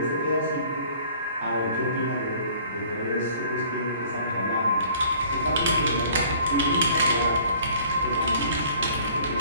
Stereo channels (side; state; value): both; inverted; correlation -0.53